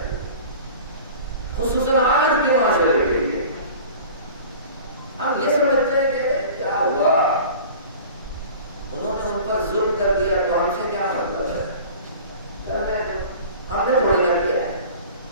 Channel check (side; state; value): both; inverted; correlation -0.41